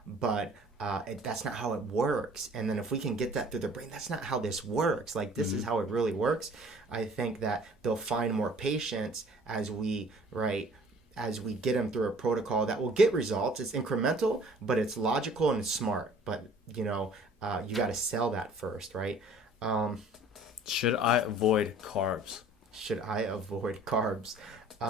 But that's not how it works. And then if we can get that through their brain, that's not how this works. Like, this is how it really works. I think that they'll find more patience as we get them through a protocol that will get results. It's incremental, but it's logical and it's smart. But, you got to sell that first, right? Should I avoid carbs?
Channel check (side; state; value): both; normal; correlation 0.52